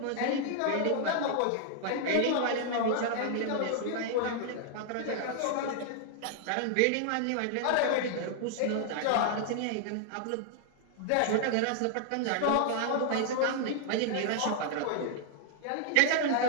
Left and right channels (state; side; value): different; both; correlation 0.00